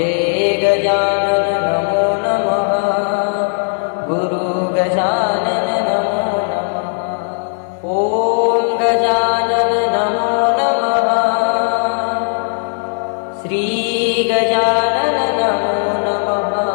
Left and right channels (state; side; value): silent; right; 68 dB below the other